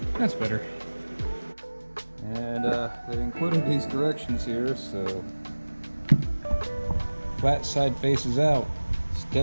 That's better. And they included these directions here, so flat side faces out,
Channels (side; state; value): both; inverted; correlation -1.00